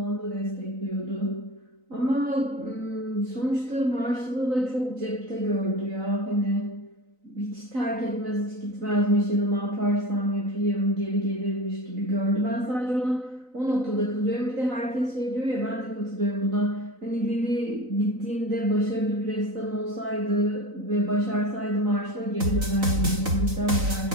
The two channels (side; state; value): left; late; 3.9 ms